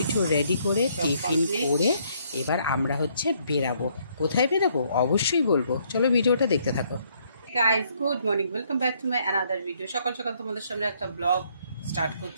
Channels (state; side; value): inverted; both; correlation -0.69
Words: রেডি করে টিফিন করে এবার আমরা হচ্ছে বেরাবো। কোথায় বেরাবো অবশ্যই বলবো, চলো ভিডিওটা দেখতে থাকো। Guys good morning, welcome back to my another video. সকাল সকাল তোমাদের সামনে একটা ব্লগ স্টার্ট